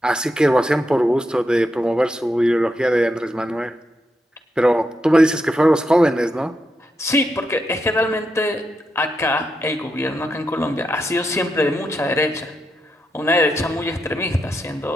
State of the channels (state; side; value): normal; both; correlation 0.84